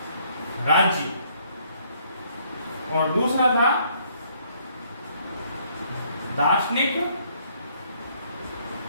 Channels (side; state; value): both; inverted; correlation -0.66